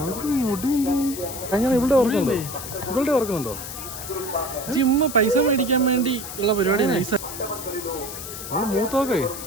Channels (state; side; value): noise; left; hiss, 9 dB below the sound